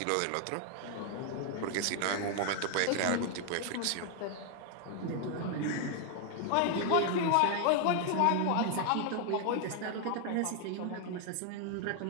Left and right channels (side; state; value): both; different; correlation 0.00